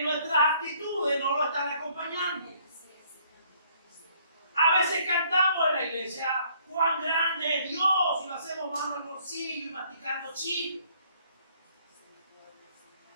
nuestras actitudes no lo están acompañando. A veces cantamos en la iglesia: cuán grande es Dios, y lo hacemos mano al bolsillo y masticando chile.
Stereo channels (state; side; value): inverted; both; correlation -0.63